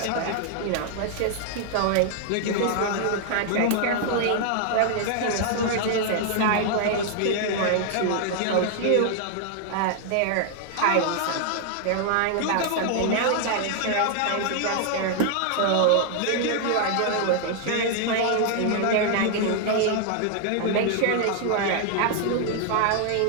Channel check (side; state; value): both; different; correlation 0.00